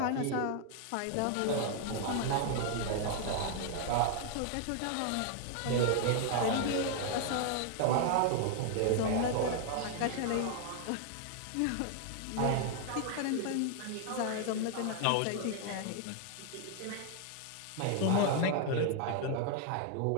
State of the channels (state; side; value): different; both; correlation 0.00